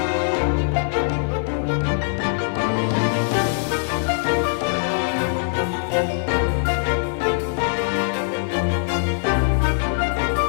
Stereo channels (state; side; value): silent; right; digital silence